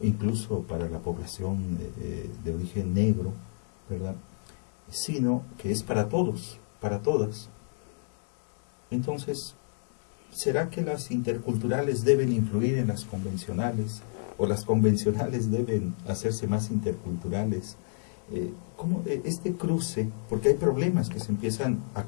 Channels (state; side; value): silent; right; digital silence